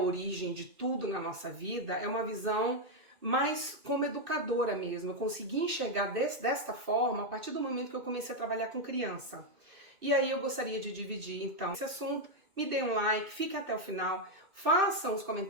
de tudo na nossa vida, é uma visão mais como educadora mesmo. Eu consegui enxergar desta forma a partir do momento que eu comecei a trabalhar com criança. E aí eu gostaria de dividir, então, esse assunto. Me dê um like, fiquem até o final, façam os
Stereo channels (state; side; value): late; left; 2.7 ms